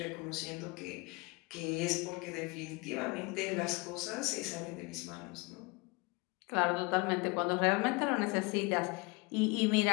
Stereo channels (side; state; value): right; quieter; 26.8 dB